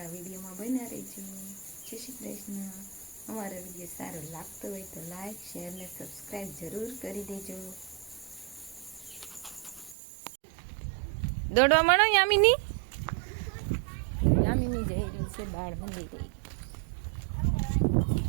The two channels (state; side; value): drops out; left; at 10.0 s